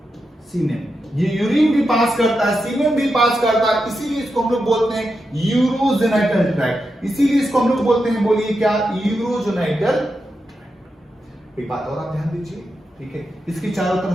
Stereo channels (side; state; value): both; normal; correlation 0.87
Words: semen। ये यूरिन भी पास करता है, सीमेन भी पास करता है, इसीलिए इसको हम लोग बोलते हैं यूरोजेनाइटल ट्रैक्ट। इसीलिए इसको हम लोग बोलते हैं, बोलिए क्या, यूरोजेनाइटल ट्रैक्ट। एक बात और आप ध्यान दीजिए, ठीक है, इसकी चारों